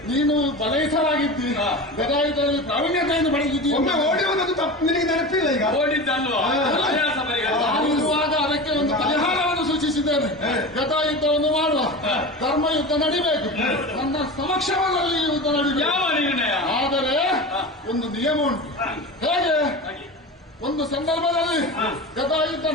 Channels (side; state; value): both; normal; correlation 0.29